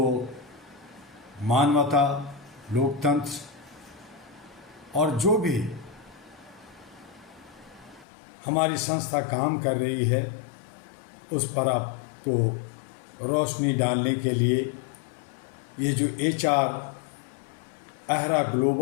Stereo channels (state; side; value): drops out; right; at 8.1 s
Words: मानवता, लोकतंत्र और जो भी हमारी संस्था काम कर रही है उस पर आपको रोशनी डालने के लिए ये जो HR अहरा